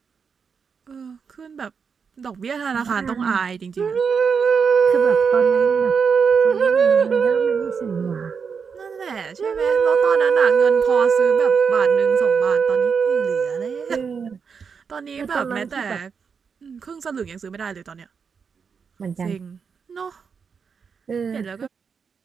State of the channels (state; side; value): quieter; left; 6.0 dB